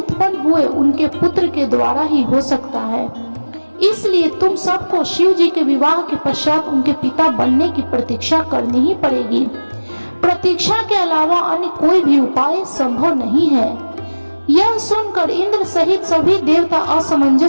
हुए उनके पुत्र के द्वारा ही हो सकता है। इसलिए तुम सबको शिव जी के विवाह के पश्चात उनके पिता बनने की प्रतीक्षा करनी ही पड़ेगी। प्रतीक्षा के अलावा अन्य कोई भी उपाय संभव नहीं है। यह सुनकर इंद्र सहित सभी देवता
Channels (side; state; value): both; inverted; correlation -1.00